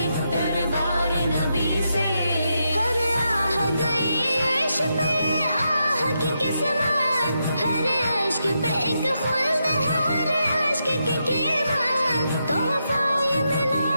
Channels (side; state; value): both; inverted; correlation -0.84